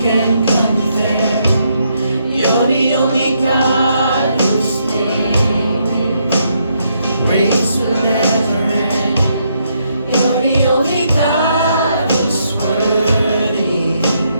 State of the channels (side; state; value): both; inverted; correlation -0.76